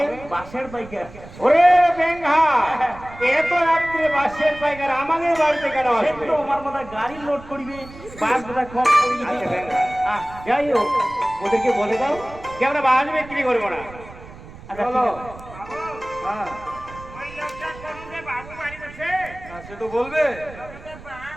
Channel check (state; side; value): noise; right; rumble, 17 dB below the sound